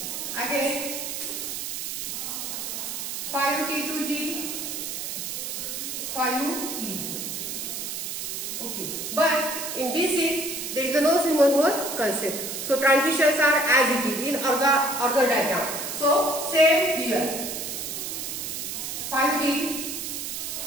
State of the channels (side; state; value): right; noise; hiss, 5 dB below the sound